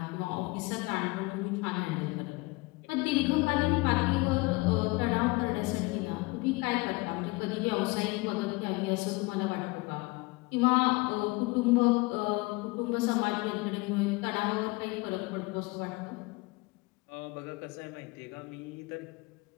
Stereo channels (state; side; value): quieter; right; 24.3 dB